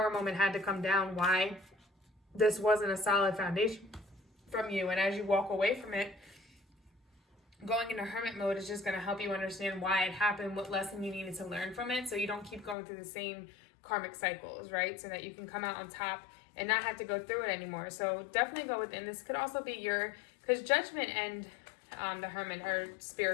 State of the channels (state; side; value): drops out; right; at 12.8 s